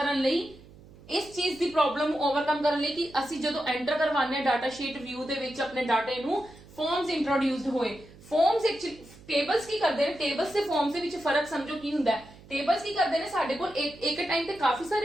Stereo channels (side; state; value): right; noise; hum, 22 dB below the sound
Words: ਲਈ ਕਿ ਅਸੀਂ ਜਦੋਂ ਐਂਟਰ ਕਰਵਾਉਂਦੇ ਹਾਂ ਡਾਟਾ ਸ਼ੀਟ ਵਿਊ ਦੇ ਵਿੱਚ ਆਪਣੇ ਡਾਟੇ ਨੂੰ, ਫਾਰਮਸ ਇੰਟਰੋਡਿਊਸਡ ਹੋਏ। ਫਾਰਮਸ ਟੇਬਲਸ ਕੀ ਕਰਦੇ ਨੇ, ਟੇਬਲਸ ਤੇ ਫਾਰਮਸ ਦੇ ਵਿੱਚ ਫਰਕ ਸਮਝੋ ਕੀ ਹੁੰਦਾ ਹੈ। ਟੇਬਲਸ ਕੀ ਕਰਦੇ ਨੇ, ਸਾਡੇ ਕੋਲ ਇੱਕ ਟਾਈਮ ਤੇ ਕਾਫੀ